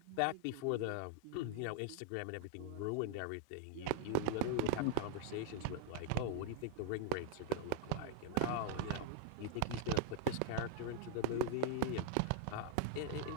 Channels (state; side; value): different; both; correlation 0.00